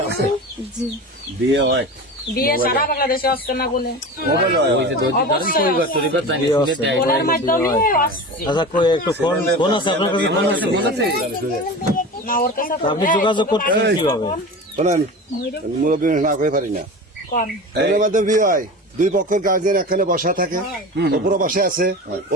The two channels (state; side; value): normal; both; correlation 0.31